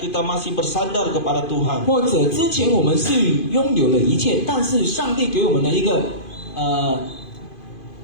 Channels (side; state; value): right; late; 2.5 ms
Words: masih bersandar kepada Tuhan? 或者之前我们是拥有了一切，但是上帝给我们的一